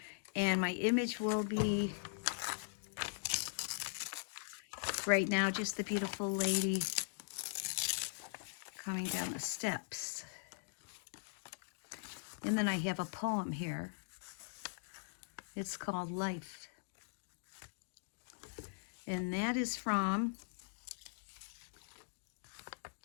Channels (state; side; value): silent; right; digital silence